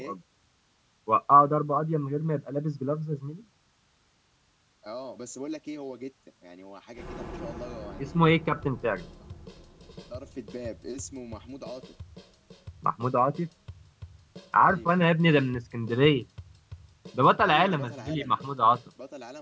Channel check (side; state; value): both; identical; correlation 1.00